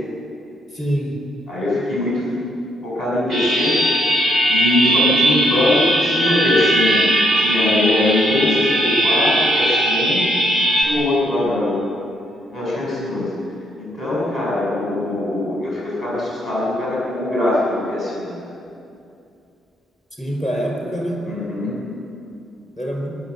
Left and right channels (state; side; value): normal; both; correlation 0.73